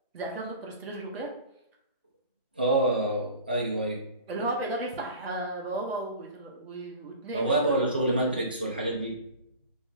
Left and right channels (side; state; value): both; inverted; correlation -0.38